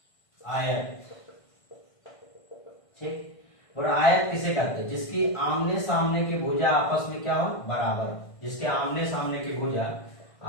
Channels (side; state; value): right; late; 1.5 ms